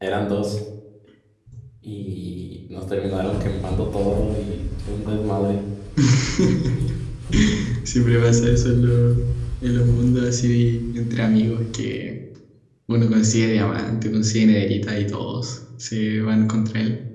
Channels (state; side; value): identical; both; correlation 1.00